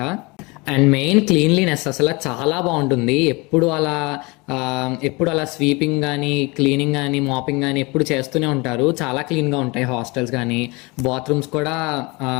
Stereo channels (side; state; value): right; quieter; 26.0 dB